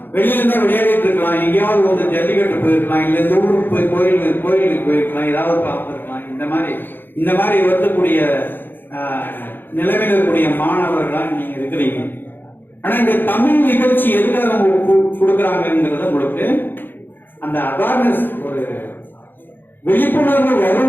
விளையாடிட்டு இருக்கலாம், எங்கேயாவது வந்து ஜல்லிக்கட்டு போயிருக்கலாம், இல்ல இந்த ஊருக்கு போய் கோயிலுக்கு போயிருக்கலாம், ஏதாவது பார்த்துருக்கலாம். இந்த மாதிரி வருத்தக்கூடிய நிலைமையில் இருக்கக்கூடிய மாணவர்களா நீங்க இருக்கிறீங்க. ஆனா இந்த தமிழ் நிகழ்ச்சி எதுக்காக கொடுக்குறாங்கிறத உங்களுக்கு அந்த அவேர்னஸ், ஒரு விழிப்புணர்வு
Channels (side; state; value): right; late; 0.096 ms